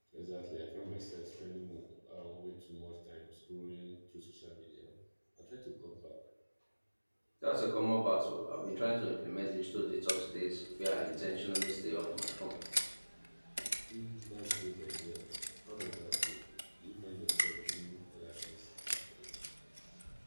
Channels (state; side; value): inverted; both; correlation -1.00